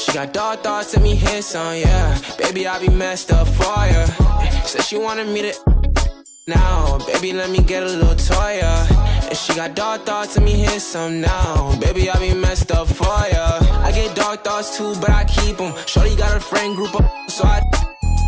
got dark thoughts, let me hit some, yeah. Baby, I be messed up for ya. Said she wanted me to now, baby, let me get a little toy, yeah. And she got dark thoughts, let me hit some now. Baby, I be messed up for ya. I get dark thoughts too, but I keep them. Shorty got a friend group up, so I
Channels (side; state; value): both; identical; correlation 1.00